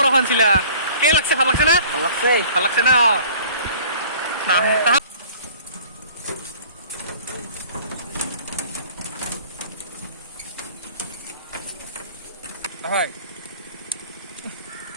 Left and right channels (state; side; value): inverted; both; correlation -0.49